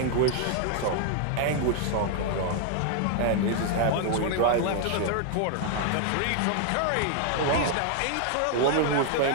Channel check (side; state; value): both; different; correlation 0.00